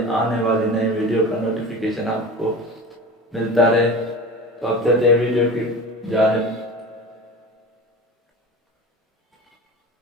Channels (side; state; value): both; normal; correlation 0.33